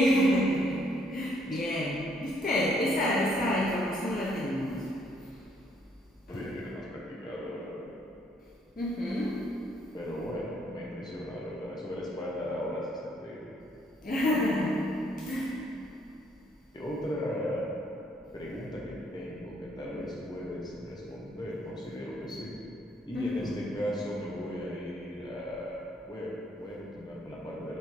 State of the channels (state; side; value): normal; both; correlation 0.68